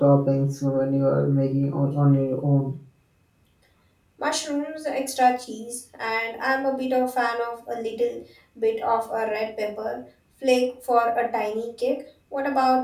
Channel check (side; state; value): both; identical; correlation 1.00